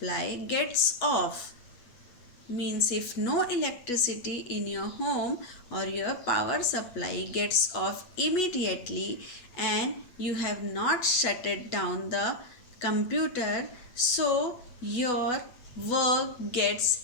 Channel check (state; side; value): late; right; 8.1 ms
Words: gets off, means if no electricity in your home or your power supply gets off immediately and you have not shut it down the computer, so your work gets